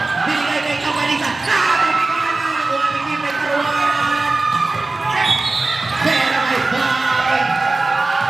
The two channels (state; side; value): quieter; left; 3.3 dB